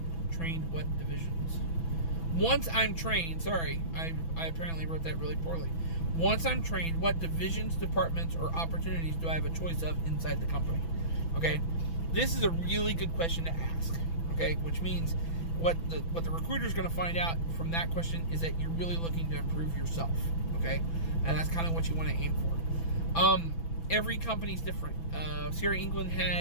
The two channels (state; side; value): late; right; 6.0 ms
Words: trained, what divisions? Once I'm trained, sorry, I apparently wrote that really poorly. Once I'm trained, what divisions, departments, or opportunities do I have a choice of inside the company? Okay, this is a really good question to ask. Okay, which means what the recruiter is going to find out from that question is that you're really looking to improve yourself. Okay, and that's kind of what you want to aim for. Every company's different. Sierra England